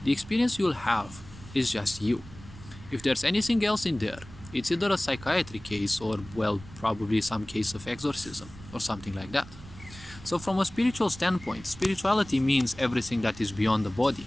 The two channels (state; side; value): noise; right; rumble, 17 dB below the sound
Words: the experience you'll have is just you. If there's anything else in there, it's either a psychiatry case or, well, probably some case of exorcism or something like that. So from a spiritual standpoint, spirituality means everything that is beyond the body.